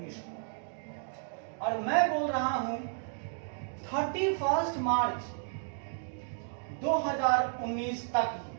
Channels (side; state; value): left; silent; digital silence